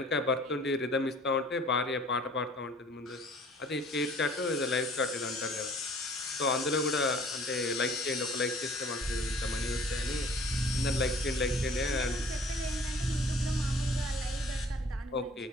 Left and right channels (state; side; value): normal; both; correlation 0.52